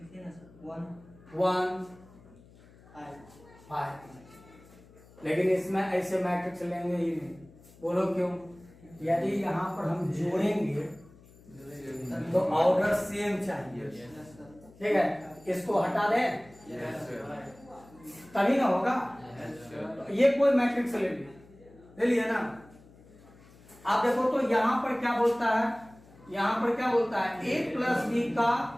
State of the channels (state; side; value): noise; left; hum, 24 dB below the sound